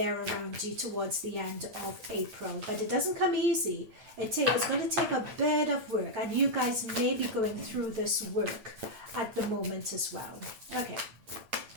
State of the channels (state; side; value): late; left; 8.7 ms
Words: around you towards the end of April. But it doesn't come easy. It's going to take a bit of work, and you guys may be going through this work at the moment as well. Okay.